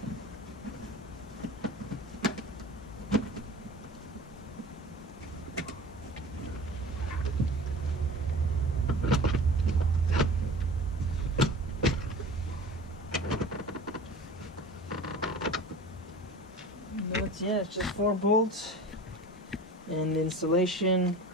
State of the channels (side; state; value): both; normal; correlation 0.38